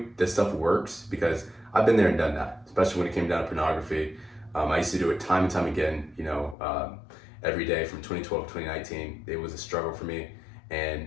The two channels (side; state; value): right; drops out; at 6.6 s